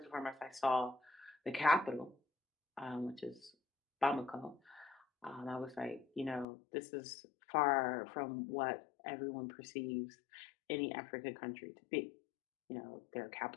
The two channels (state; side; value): drops out; right; at 6.5 s